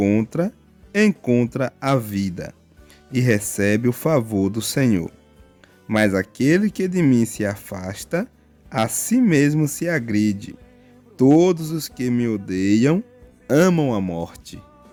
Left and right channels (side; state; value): both; identical; correlation 1.00